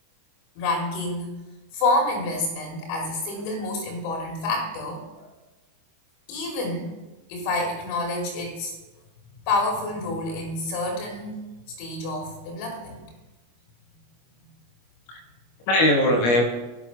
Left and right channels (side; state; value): right; late; 25 ms